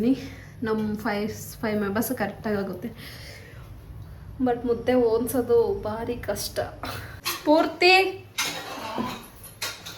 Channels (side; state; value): both; identical; correlation 1.00